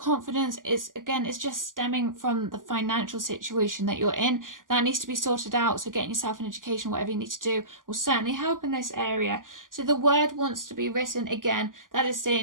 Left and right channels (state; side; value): late; left; 0.89 ms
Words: it's just stemming from the financial situation that you're in. That needs to be sorted out. So getting yourself an education, whatever you need to do, will certainly help in this area. So the word wants to be written again. That is